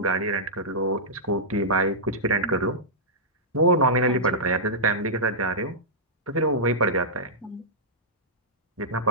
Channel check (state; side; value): normal; both; correlation -0.12